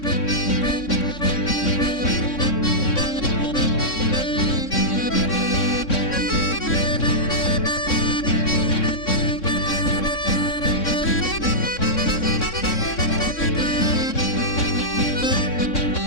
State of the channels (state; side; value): late; right; 3.6 ms